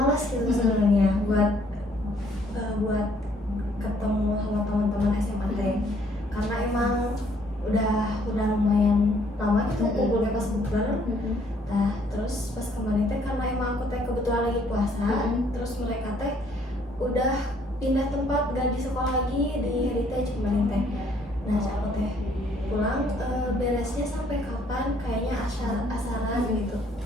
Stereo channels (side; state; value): both; normal; correlation 0.64